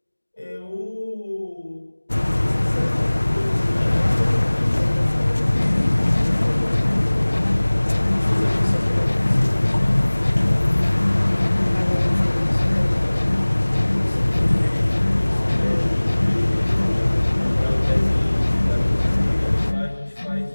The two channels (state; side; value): inverted; both; correlation -1.00